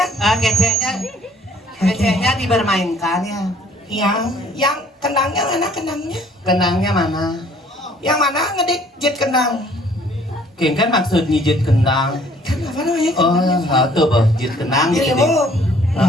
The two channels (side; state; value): both; normal; correlation 0.59